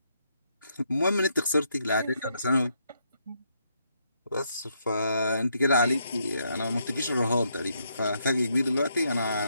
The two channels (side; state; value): both; inverted; correlation -0.76